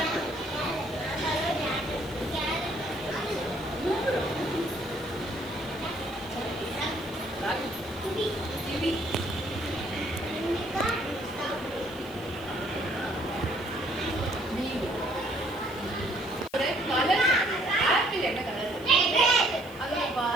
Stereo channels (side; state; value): left; noise; hiss, 22 dB below the sound